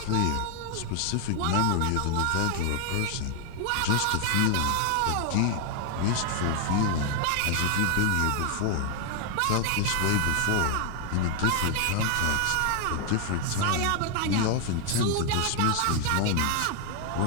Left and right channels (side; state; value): both; different; correlation 0.00